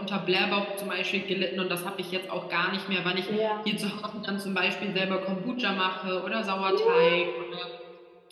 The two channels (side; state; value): both; identical; correlation 1.00